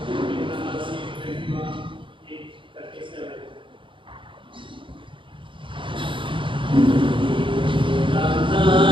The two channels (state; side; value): late; left; 0.24 ms